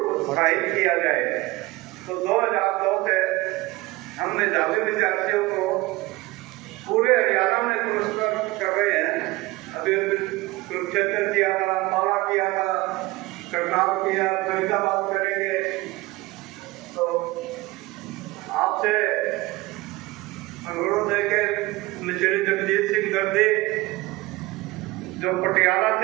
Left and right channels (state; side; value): quieter; left; 20.6 dB